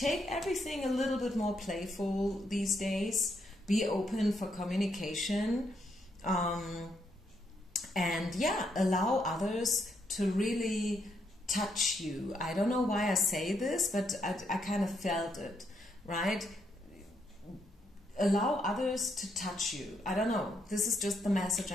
everything a little bit more playful these days. Be open for communication. And yeah, allow others to really touch you. I don't know why I say this, but I kind of felt it, right? Allow others to touch you. I don't know. This is just the message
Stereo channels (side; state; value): both; normal; correlation 0.77